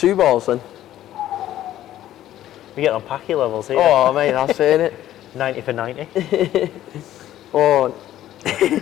balls then. We get on packy levels here. Oh, mate, that's it. 90 for 90. Oh.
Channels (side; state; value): right; quieter; 13.0 dB